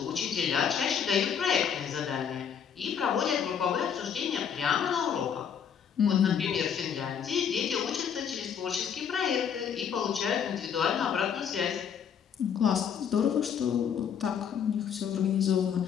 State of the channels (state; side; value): quieter; right; 7.8 dB